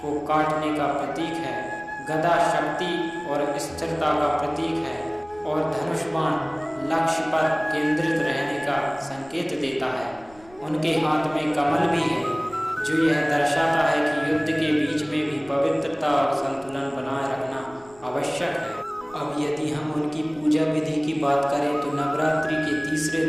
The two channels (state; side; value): noise; left; rumble, 26 dB below the sound